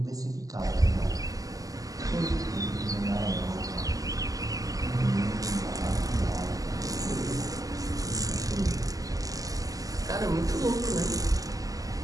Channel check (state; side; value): late; left; 0.17 ms